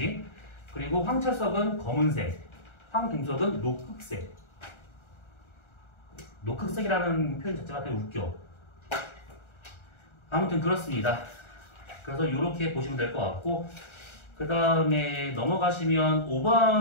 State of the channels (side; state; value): right; late; 1.4 ms